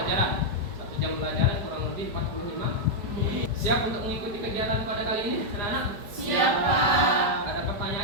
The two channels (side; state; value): left; late; 4.9 ms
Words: 1 jam pelajaran kurang lebih 45 menit. Siap untuk mengikuti kegiatan pada kali ini, anak-anak? Siap, Pak. Ada